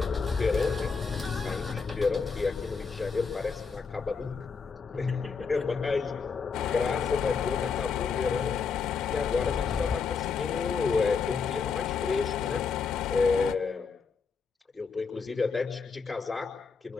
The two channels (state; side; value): quieter; right; 5.4 dB